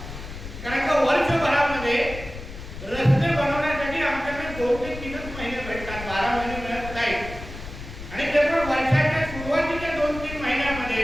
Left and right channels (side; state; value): left; noise; rumble, 11 dB below the sound